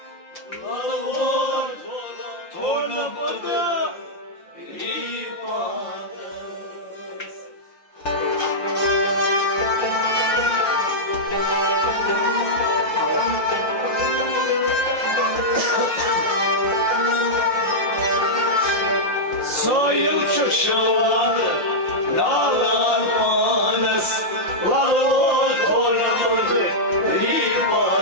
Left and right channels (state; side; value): late; right; 5.7 ms